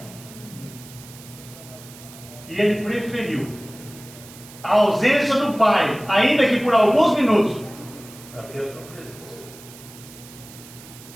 E ele preferiu a ausência do Pai, ainda que por alguns minutos, para ter a sua presença.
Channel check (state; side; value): noise; right; hiss, 19 dB below the sound